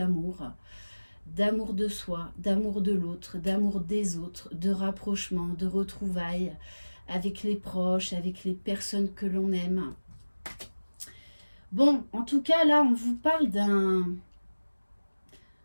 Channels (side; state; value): both; inverted; correlation -1.00